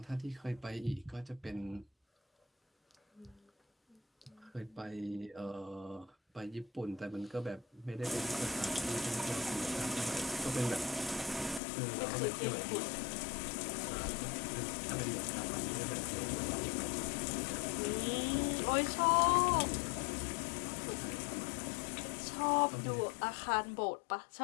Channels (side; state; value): right; drops out; at 11.6 s